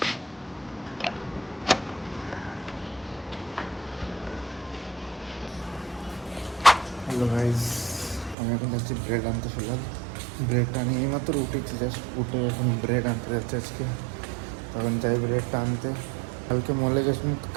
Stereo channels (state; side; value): drops out; left; at 8.3 s